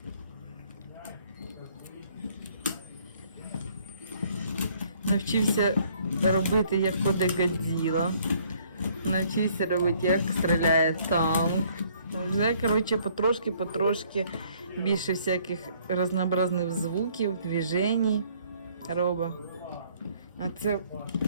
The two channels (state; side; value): inverted; both; correlation -0.62